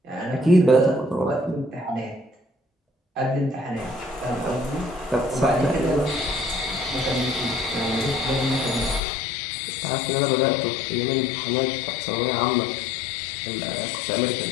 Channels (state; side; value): drops out; right; at 9.0 s